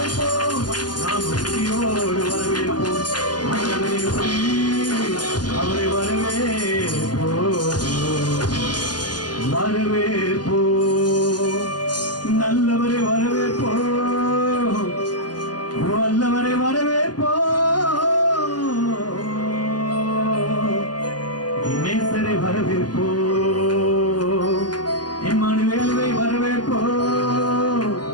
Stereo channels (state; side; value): late; right; 0.70 ms